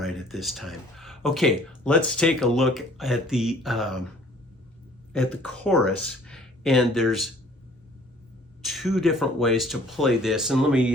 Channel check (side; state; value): both; normal; correlation 0.54